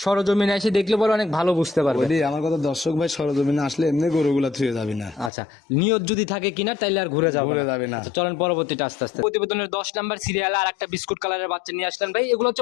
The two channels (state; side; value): drops out; right; at 5.3 s